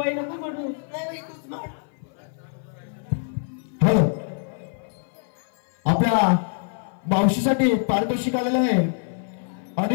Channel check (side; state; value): right; silent; 56 dB below the other